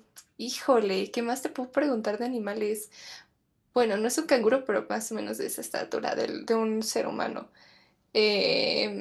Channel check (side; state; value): both; identical; correlation 1.00